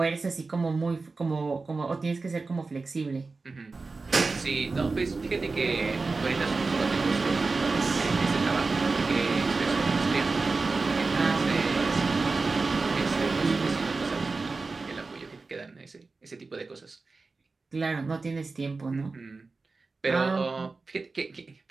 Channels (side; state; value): left; quieter; 3.9 dB